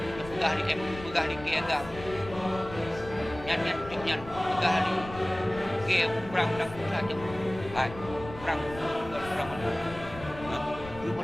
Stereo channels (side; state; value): left; noise; rumble, 14 dB below the sound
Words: pegah di MOU, pegah di KAGAM. Nyan pegah di ke perang dan saja. Hai, perang mana? Itu